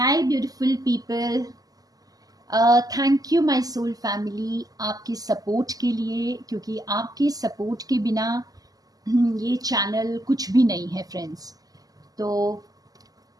Hi beautiful people, thank you my soul family आपकी support के लिए, क्योंकि आपके सपोर्ट के बिना ये चैनल कुछ भी नहीं है फ्रेंड्स। तो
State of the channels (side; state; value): left; late; 0.17 ms